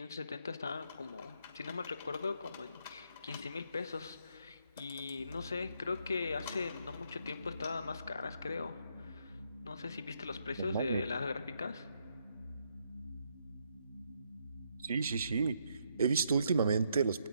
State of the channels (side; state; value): both; inverted; correlation -0.75